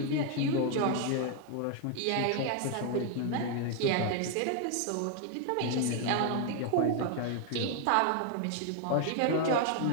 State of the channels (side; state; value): both; different; correlation 0.00